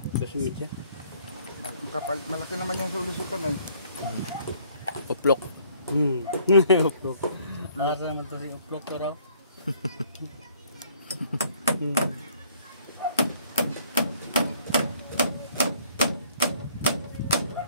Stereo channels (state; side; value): inverted; both; correlation -0.60